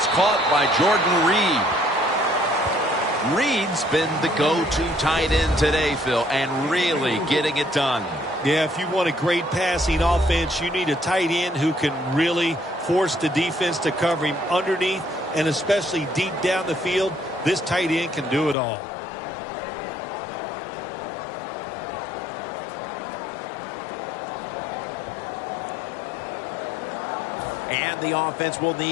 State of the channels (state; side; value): drops out; right; at 18.6 s